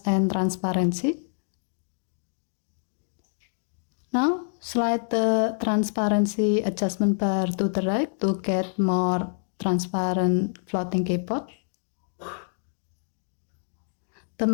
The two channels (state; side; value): silent; right; digital silence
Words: and Transparency. Now, slide the transparency adjustment bar to the right to get more transparent floating keyboard. The